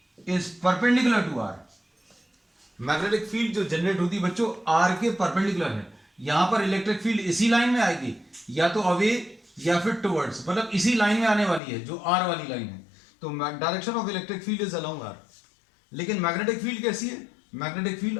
is perpendicular to R. Magnetic field जो जनरेट होती है बच्चों आर के परपेंडिकुलर है। यहां पर इलेक्ट्रिक फील्ड इसी लाइन में आएगी, या तो अवे या फिर टुवर्ड्स, मतलब इसी लाइन में आने वाली है जो आर वाली लाइन है। तो direction of electric field is along are. लेकिन मैग्नेटिक फील्ड कैसी है, मैग्नेटिक फील्ड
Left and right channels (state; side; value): drops out; right; at 11.6 s